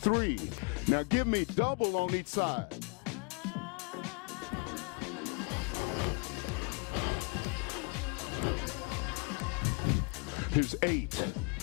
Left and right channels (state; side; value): quieter; right; 34.9 dB